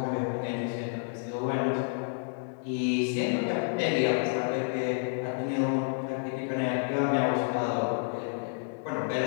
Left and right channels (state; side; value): silent; right; 58 dB below the other